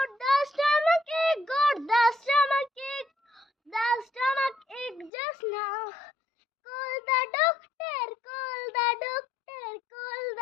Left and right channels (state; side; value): drops out; right; at 5.1 s